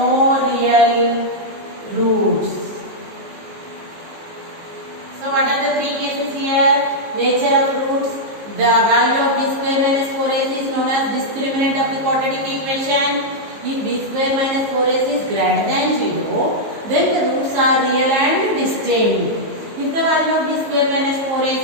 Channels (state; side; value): late; left; 19 ms